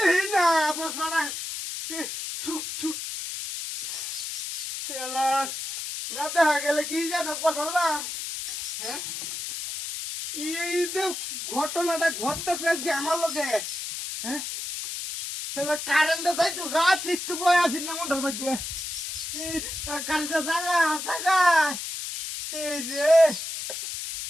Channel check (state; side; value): noise; left; hiss, 6 dB below the sound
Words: না, চশমাটা চুপ চুপ। খেলার না দেখা গেলে কি জানো কথা না। হ্যাঁ, এই যে ঘটনাটা ঘটতেছে যে আমার লোকে। হ্যাঁ, তাহলে কারেন্টে তাই তো গাছ একটু বয়ে আছি না মন্ডার মধ্যে। কারেন্টে জাগা জাগা এই যে